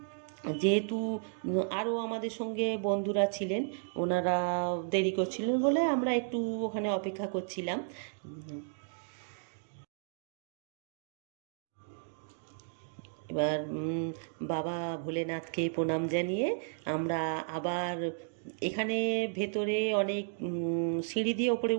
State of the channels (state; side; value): silent; left; digital silence